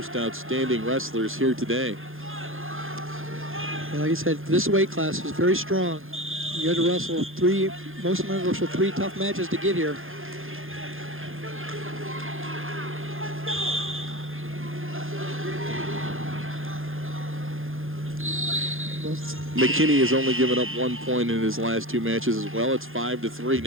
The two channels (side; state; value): left; late; 0.60 ms